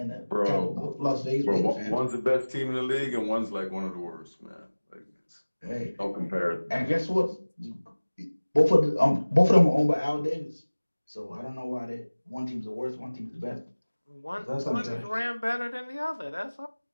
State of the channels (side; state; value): both; inverted; correlation -1.00